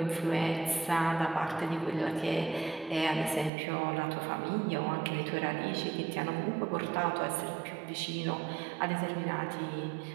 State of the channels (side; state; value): left; drops out; at 3.5 s